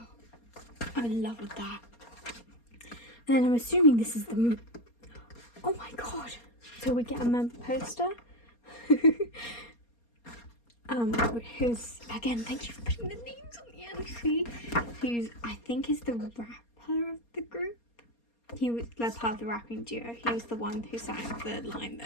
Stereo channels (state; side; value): late; right; 4.3 ms